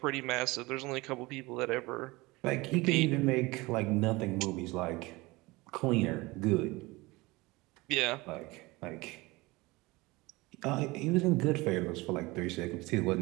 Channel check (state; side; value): quieter; left; 22.4 dB